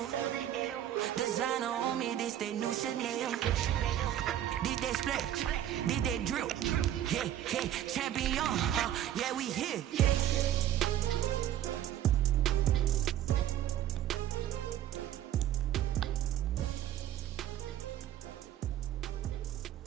Designer on me, this they new Chanel. This they split, this they drill. Yeah, yeah, champion, yeah, we here.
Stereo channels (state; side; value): quieter; left; 11.7 dB